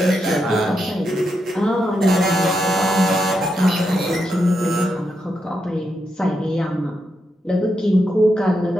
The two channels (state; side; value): normal; both; correlation 0.84